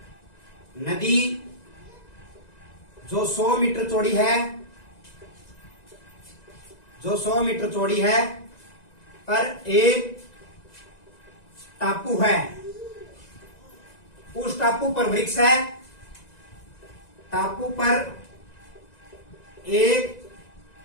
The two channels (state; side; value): late; right; 1.9 ms